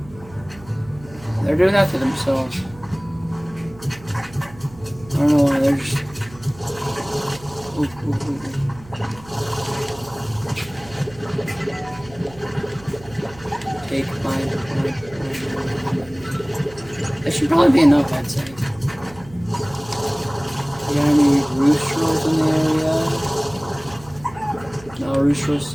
They're doing that to themselves. I don't know why, they're just... Ooh. Take mine. That should probably be enough, I'd say. You got any roosters in the area? No, Rooster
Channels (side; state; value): right; noise; hum, 21 dB below the sound